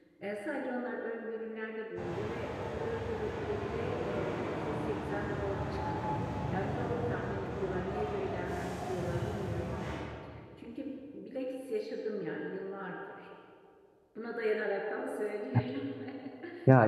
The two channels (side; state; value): both; identical; correlation 1.00